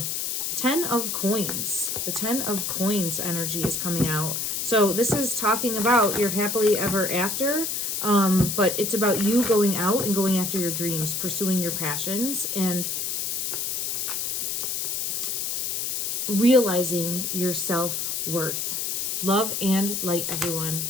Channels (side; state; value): left; noise; hiss, 1 dB below the sound